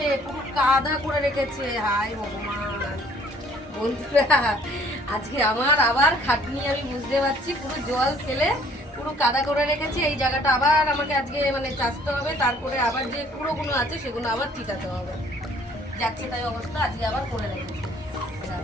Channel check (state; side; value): normal; both; correlation 0.58